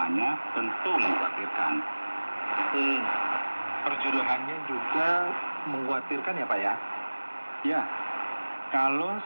tentu mengkhawatirkan. Perjodohannya juga mengkhawatirkan ya Pak ya? Ya, kalau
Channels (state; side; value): inverted; both; correlation -1.00